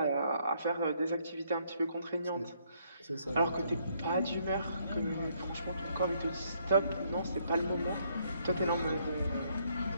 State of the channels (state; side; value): inverted; both; correlation -0.70